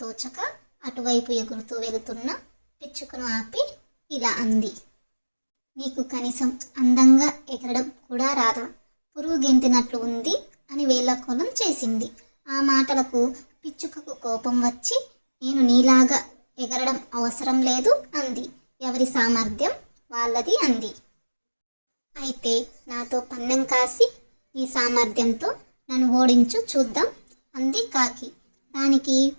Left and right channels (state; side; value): inverted; both; correlation -1.00